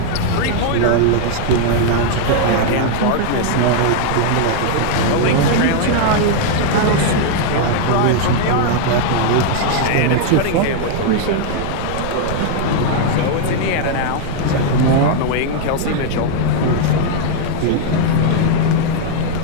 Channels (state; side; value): different; both; correlation -0.01